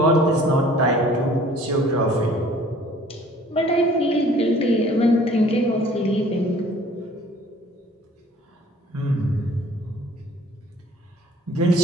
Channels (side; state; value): both; normal; correlation 0.53